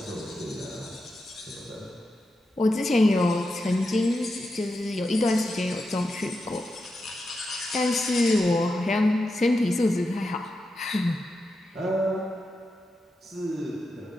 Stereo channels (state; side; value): normal; both; correlation 0.88